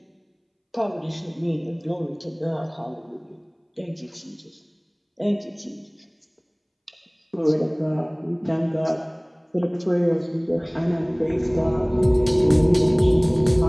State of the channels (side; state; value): both; identical; correlation 1.00